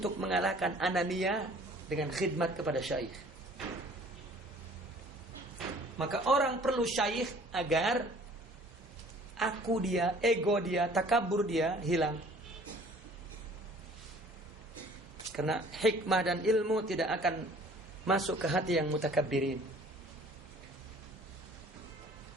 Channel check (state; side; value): normal; both; correlation 0.52